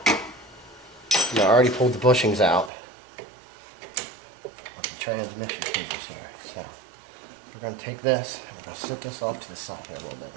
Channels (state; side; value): drops out; left; at 2.7 s